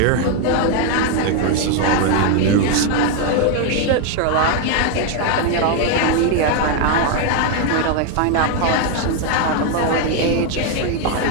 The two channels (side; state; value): both; different; correlation 0.01